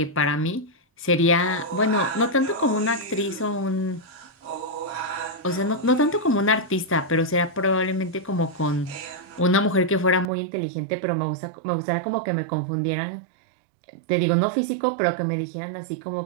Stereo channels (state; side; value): drops out; left; at 10.3 s